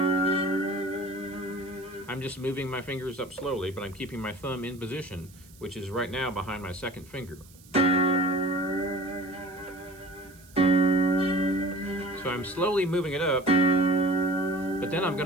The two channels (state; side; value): noise; right; hiss, 25 dB below the sound